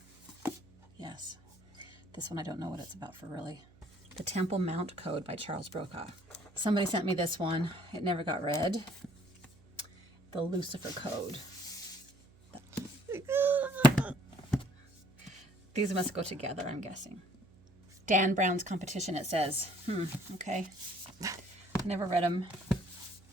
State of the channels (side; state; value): right; noise; hum, 27 dB below the sound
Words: Yes. This one I don't know what it's about for really. The Temple Mount Code by Charles Brokaw. Somebody sent me this one. It never got read. The Lucifer Code. These must go together, I'm guessing. Dan Brown's Competition, it says. Okay. I never read them.